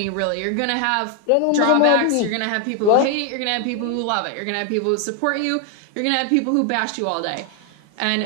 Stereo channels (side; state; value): both; different; correlation 0.00